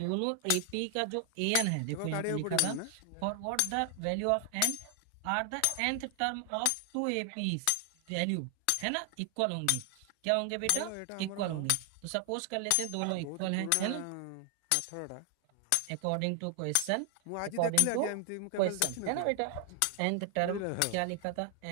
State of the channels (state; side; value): different; both; correlation 0.00